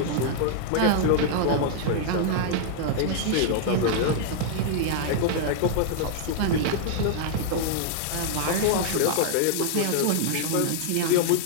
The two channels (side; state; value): both; different; correlation -0.01